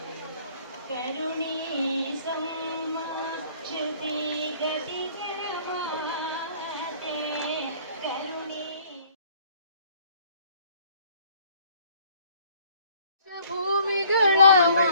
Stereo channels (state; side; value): inverted; both; correlation -0.58